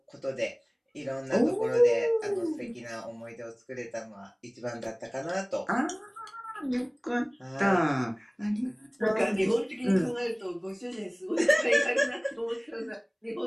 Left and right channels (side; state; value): both; identical; correlation 1.00